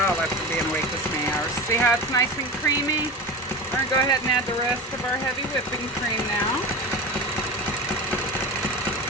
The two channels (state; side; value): normal; both; correlation 0.27